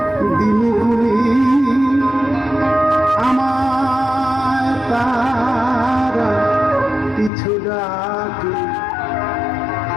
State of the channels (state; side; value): drops out; right; at 7.3 s